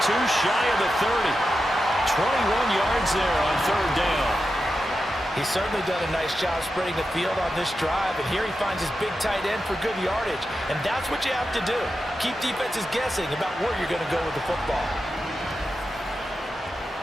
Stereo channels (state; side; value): normal; both; correlation 0.90